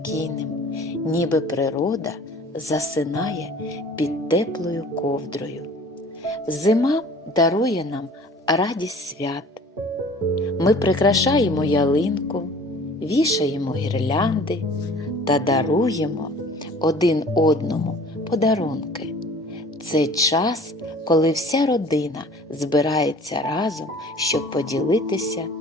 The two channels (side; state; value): both; normal; correlation 0.48